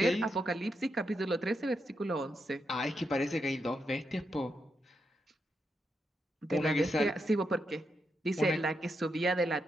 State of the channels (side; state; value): both; normal; correlation 0.83